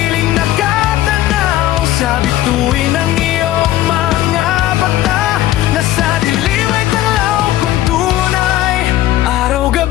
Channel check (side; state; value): right; quieter; 14.3 dB